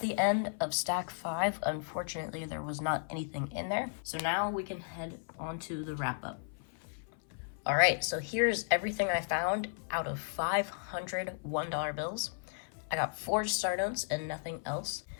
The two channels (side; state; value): right; silent; 55 dB below the other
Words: end of stack 5. Unfortunately, there was not anything in there. So now we can head on to the wrap up. All right, so here's everything I found out of 500 $1 bills. I got 4 star notes and nothing else.